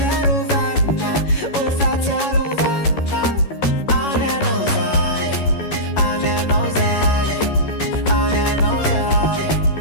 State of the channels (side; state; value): right; late; 11 ms